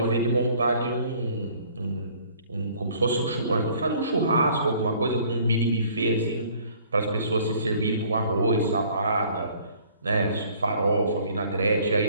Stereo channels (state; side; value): inverted; both; correlation -0.56